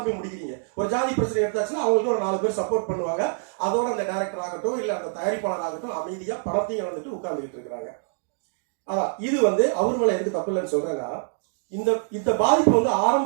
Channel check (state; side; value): silent; left; digital silence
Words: போய் முடிக்கிறீங்க. ஒரு ஜாதி பிரச்சனை எடுத்தாச்சுன்னா அவங்களுக்கு ஒரு 4 பேர் சப்போர்ட் பண்ணுவாங்க. அதோட அந்த டைரக்டர் ஆகட்டும் இல்ல அந்த தயாரிப்பாளர் ஆகட்டும் அமைதியா பணத்தையும் வந்துட்டு உட்கார்ந்துட்டு இருக்கிறாங்க. அதான் இது வந்து அவர் மேல எதுக்கு தப்பு இல்லைன்னு சொல்றேன்னா, இந்த பாதிப்பு வந்து